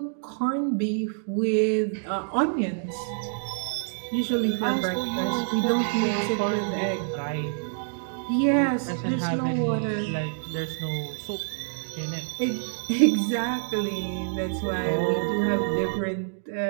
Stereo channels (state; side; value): silent; left; digital silence